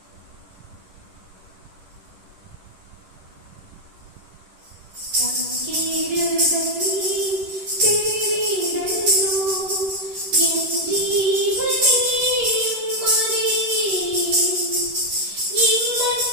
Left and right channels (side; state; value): left; late; 10 ms